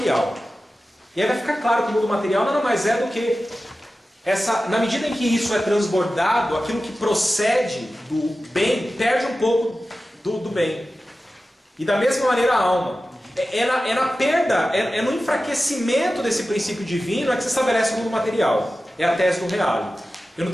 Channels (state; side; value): normal; both; correlation 0.94